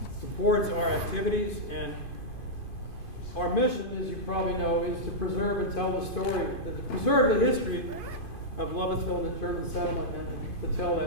supports our activities, and our mission, as you probably know, is to preserve and tell the story, to preserve the history of Lovettsville and the German settlement, and to tell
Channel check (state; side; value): late; right; 2.5 ms